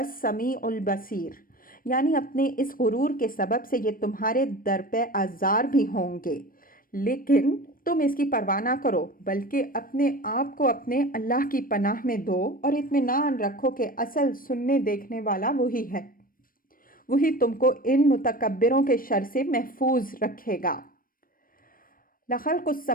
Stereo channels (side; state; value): right; late; 0.41 ms